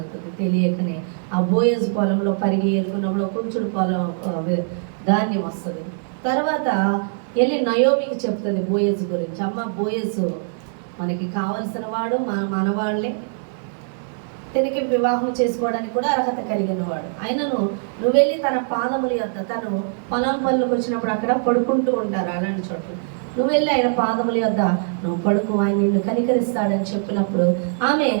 తెలియకనే. ఆ బోయజ్ పొలంలో పరిగె ఏరుకున్నప్పుడు కొంచెం పొలం ధాన్యం వస్తుంది. తర్వాత వెళ్ళి నయోమికి చెప్తుంది బోయజ్ గురించి, అమ్మ బోయజ్ మనకి కావలసిన వాడు మనవాళ్ళే. తనకి వివాహం చేసుకోవడానికి కూడా అర్హత కలిగిన వాడు. ఆయనను నువ్వు వెళ్ళి తన పాదముల యొద్ద, తను పొలం పనులకు వచ్చినప్పుడు అక్కడ పడుకుంటూ ఉంటారు అలాంటి చోట్ల, నువ్వు వెళ్ళి ఆయన పాదముల యొద్ద నువ్వు పడుకు, ఆయన నిన్ను కనికరిస్తాడని చెప్పినప్పుడు ఆమె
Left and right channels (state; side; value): silent; left; digital silence